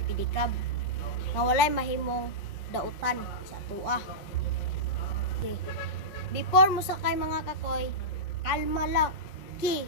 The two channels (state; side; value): late; right; 5.2 ms